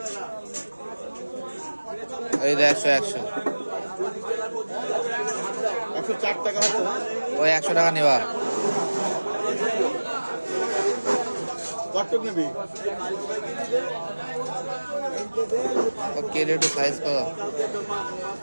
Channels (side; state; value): both; inverted; correlation -1.00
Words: এই 100 104 টাকা হচ্ছে। ওই 100 টাকা নেবা। কতটুক নেবি? কেটে একটু সাইজ করো,